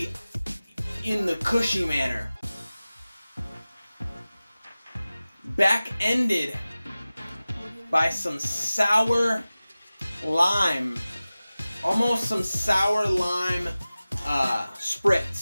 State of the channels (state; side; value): inverted; both; correlation -0.97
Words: in the cushy manner, back-ended by some sour lime, almost some sour lime